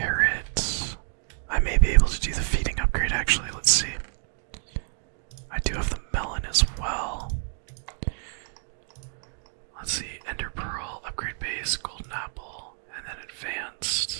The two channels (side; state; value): left; silent; digital silence